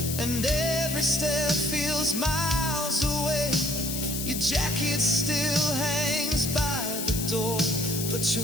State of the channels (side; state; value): left; noise; hiss, 4 dB below the sound